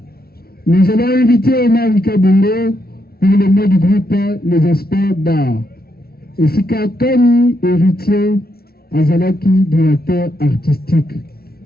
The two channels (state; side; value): late; right; 0.44 ms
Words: nous allons inviter Omar Kabungo pour le mot du groupe Les Experts d'art. Et Sika Kani, héritier, Azalaki, directeur artistique.